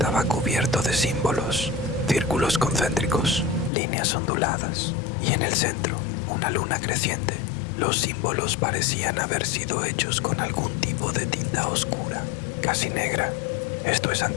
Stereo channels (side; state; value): right; drops out; at 3.7 s